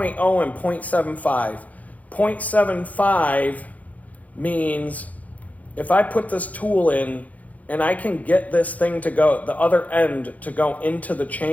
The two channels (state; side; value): late; right; 0.073 ms